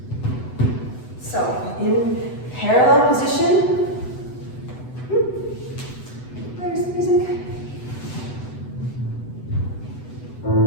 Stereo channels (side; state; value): right; late; 8.0 ms